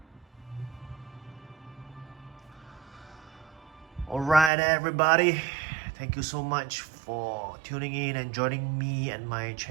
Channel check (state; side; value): drops out; left; at 4.5 s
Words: Alright everybody, thank you so much for tuning in and joining me and my